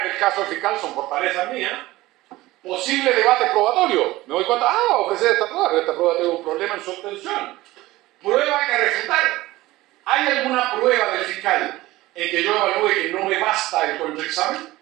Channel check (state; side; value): quieter; left; 18.0 dB